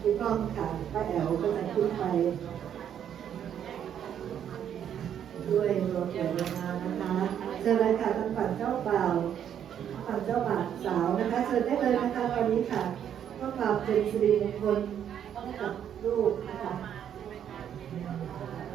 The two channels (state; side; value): quieter; left; 9.4 dB